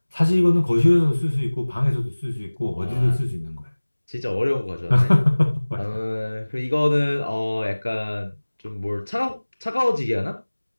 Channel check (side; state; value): both; inverted; correlation -1.00